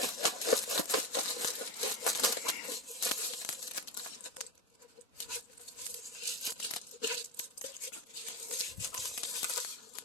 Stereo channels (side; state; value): both; normal; correlation 0.18